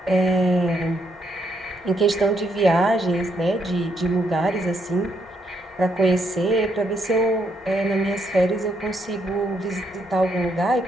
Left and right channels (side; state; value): both; normal; correlation 0.75